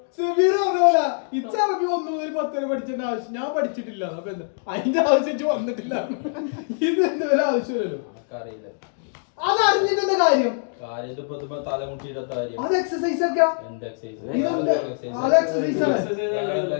ഇച്ചറബി 1 മുതൽ 10 വരെ പഠിച്ചേണ്ട ആവശ്യം ഞാൻ പഠിച്ചിട്ടില്ല. അപ്പൊ എന്താ അതിന്റെ ആവശ്യം വന്നിട്ടില്ല. ഇത് എന്താ ഒരു ആവശ്യമില്ലല്ലോ. അതറിഞ്ഞിട്ടെന്താ കാര്യം? അത് എക്സസൈസ് ഒക്കെ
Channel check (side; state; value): right; silent; digital silence